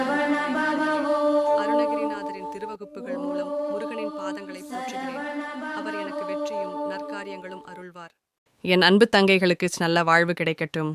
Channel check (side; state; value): both; identical; correlation 1.00